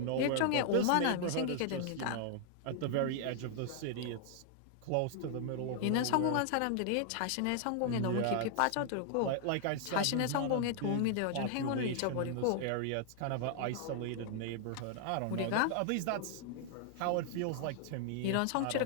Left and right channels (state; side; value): different; both; correlation -0.01